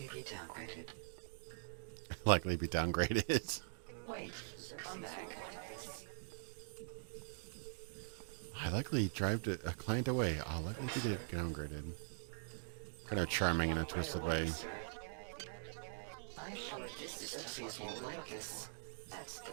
be downgraded. Likely be downgraded. Wait, come back. I likely drive a client away. I'll likely be downgraded. Kind of charming in a twisted way. I'm sure this system won't like this. That's the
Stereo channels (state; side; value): silent; left; digital silence